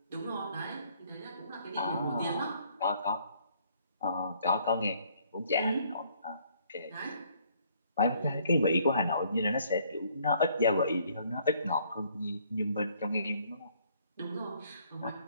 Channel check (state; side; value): inverted; both; correlation -0.64